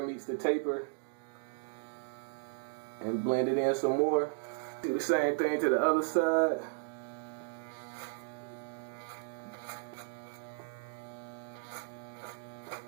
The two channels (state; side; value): silent; left; digital silence